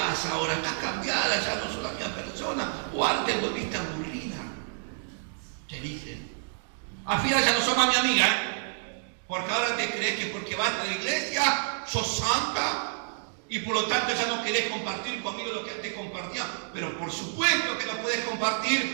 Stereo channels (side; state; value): left; silent; digital silence